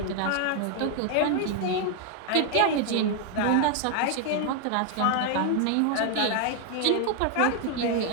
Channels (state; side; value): different; both; correlation 0.01